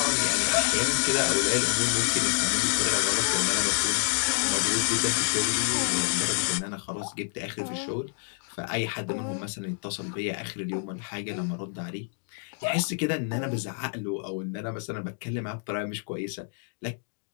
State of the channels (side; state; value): right; silent; 59 dB below the other